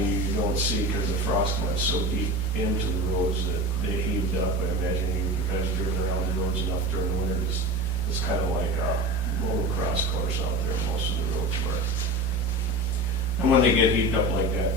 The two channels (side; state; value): both; normal; correlation 0.30